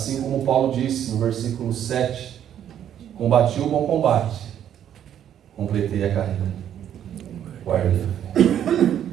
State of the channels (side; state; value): left; quieter; 10.1 dB